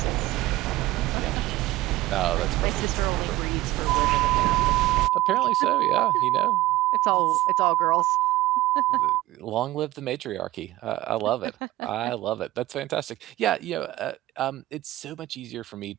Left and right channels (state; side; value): quieter; left; 16.9 dB